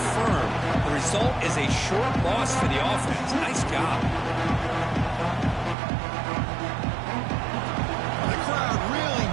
firm. The result is a short loss for the offense. Nice job. The crowd really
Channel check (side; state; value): left; drops out; at 5.8 s